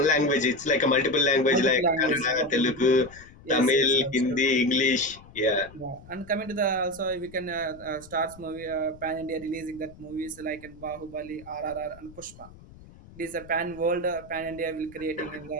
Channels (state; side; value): noise; left; rumble, 21 dB below the sound